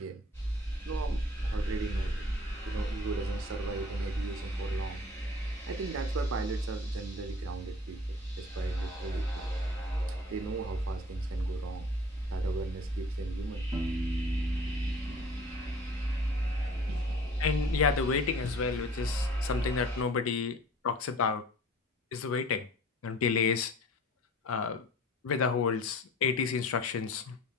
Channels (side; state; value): both; normal; correlation 0.47